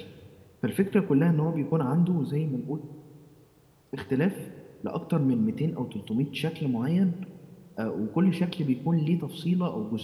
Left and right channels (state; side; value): identical; both; correlation 1.00